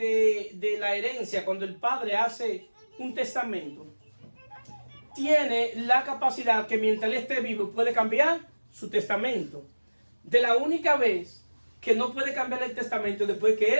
herencia, cuando el padre hace un testamento, tiene la capacidad que mientras él esté vivo puede cambiar su testamento. De la única vez que no puede cambiar el testamento después que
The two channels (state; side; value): inverted; both; correlation -1.00